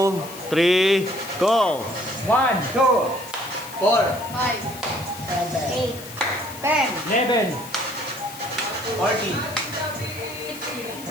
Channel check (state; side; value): noise; left; hiss, 15 dB below the sound